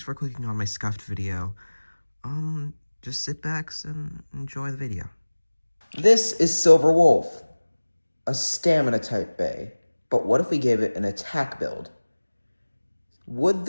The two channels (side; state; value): both; inverted; correlation -1.00